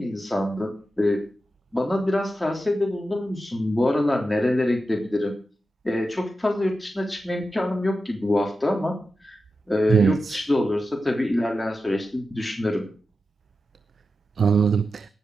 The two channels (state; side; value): normal; both; correlation 0.91